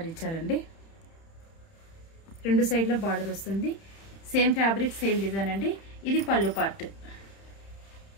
ఇచ్చారండి. రెండు సైడ్లో బార్డర్ వస్తుంది. సేమ్ ఫ్యాబ్రిక్, సేమ్ డిజైన్ అండి. ఇది పళ్ళు పార్ట్.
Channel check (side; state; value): right; late; 30 ms